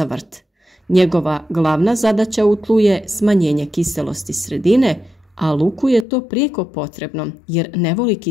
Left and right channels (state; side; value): drops out; right; at 6.1 s